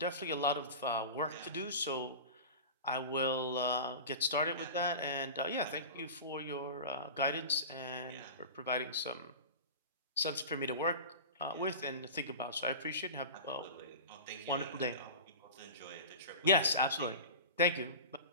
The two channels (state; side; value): inverted; both; correlation -0.31